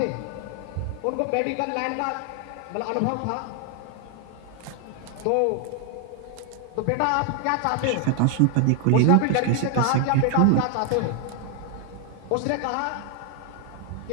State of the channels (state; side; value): different; both; correlation 0.00